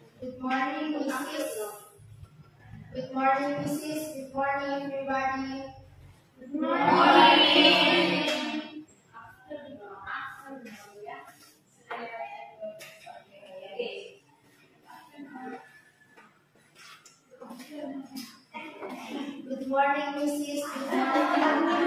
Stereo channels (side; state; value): both; identical; correlation 1.00